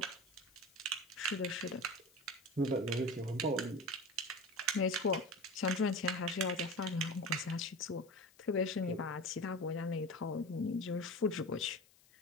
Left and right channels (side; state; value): left; noise; hiss, 28 dB below the sound